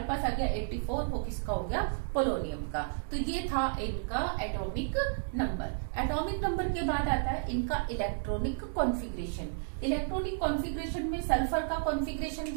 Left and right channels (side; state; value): left; silent; digital silence